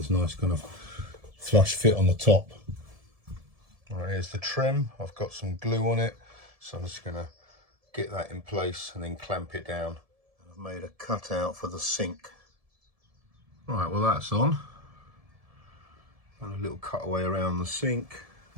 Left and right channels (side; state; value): left; late; 1.7 ms